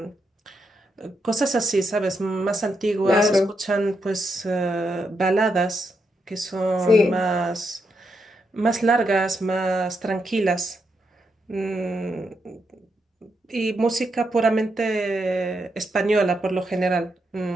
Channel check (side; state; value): both; normal; correlation 0.82